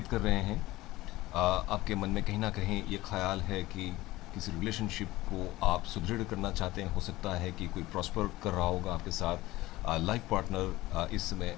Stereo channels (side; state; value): right; quieter; 18.2 dB